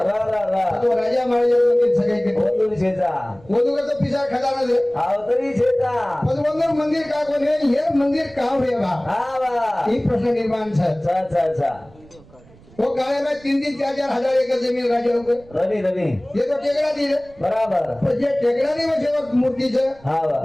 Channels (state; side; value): noise; right; rumble, 25 dB below the sound